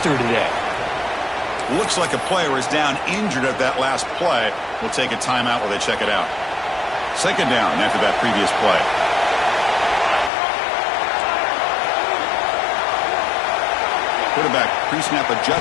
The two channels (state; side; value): drops out; right; at 10.3 s